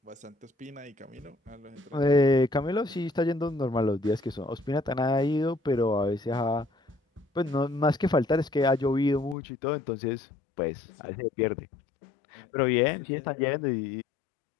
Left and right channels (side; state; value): right; drops out; at 9.3 s